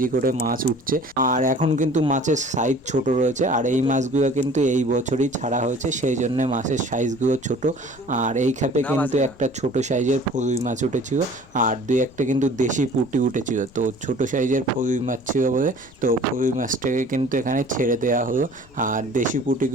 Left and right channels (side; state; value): left; noise; rumble, 25 dB below the sound